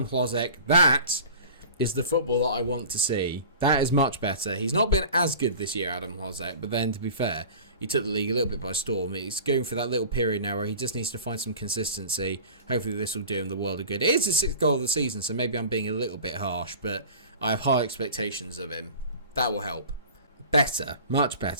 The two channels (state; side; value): inverted; both; correlation -0.39